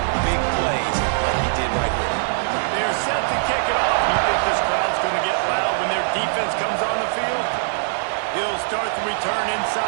Start the return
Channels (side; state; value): left; silent; digital silence